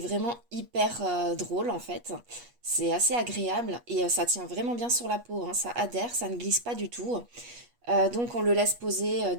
hyper drôle en fait. C'est assez agréable et ça tient vraiment bien sur la peau, hein. Ça adhère, ça ne glisse pas du tout. Donc on le laisse poser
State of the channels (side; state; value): left; late; 8.3 ms